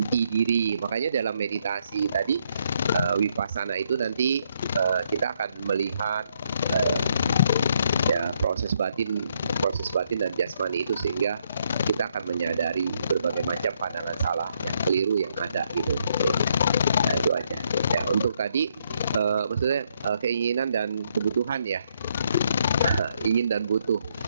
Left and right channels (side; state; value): both; inverted; correlation -0.74